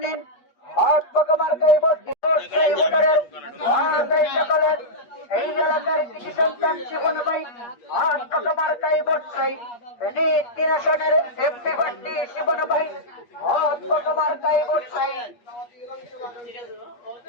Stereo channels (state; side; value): late; right; 8.4 ms